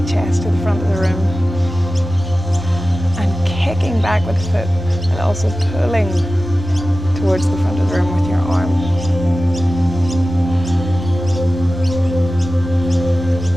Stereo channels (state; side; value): normal; both; correlation 0.95